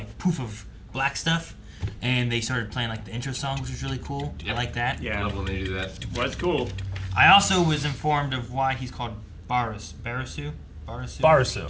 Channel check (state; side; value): identical; both; correlation 1.00